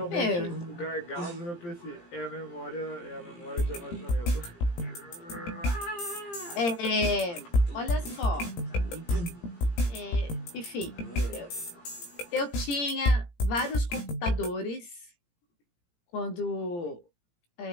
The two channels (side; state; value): right; late; 17 ms